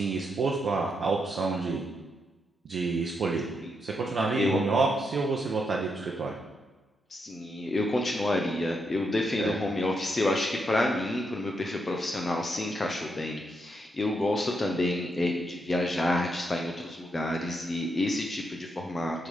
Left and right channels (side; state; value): both; normal; correlation 0.81